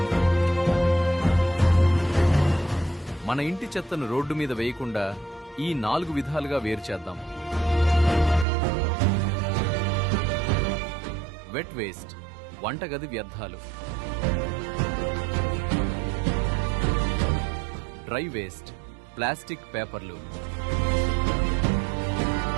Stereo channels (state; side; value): drops out; left; at 8.5 s